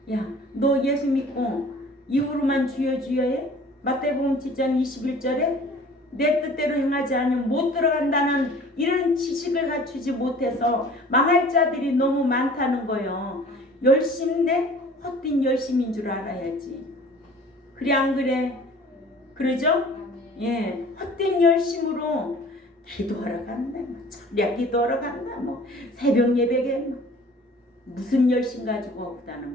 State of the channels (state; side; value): normal; both; correlation 0.48